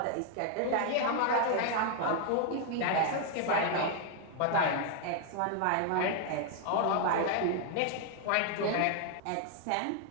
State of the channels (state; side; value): different; both; correlation 0.00